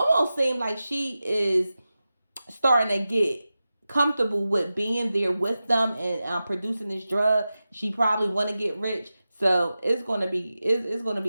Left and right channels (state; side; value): inverted; both; correlation -0.94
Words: seemed like she is starting to get comfortable with being there with them and producing this drug. She probably want to get rich. So it's gonna be